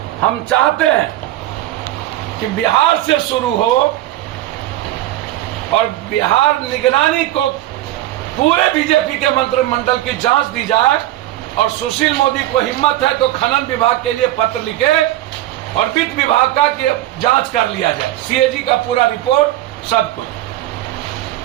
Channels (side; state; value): left; quieter; 14.8 dB